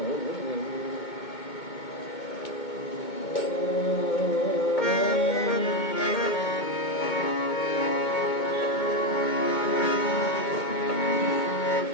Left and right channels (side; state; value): right; late; 2.2 ms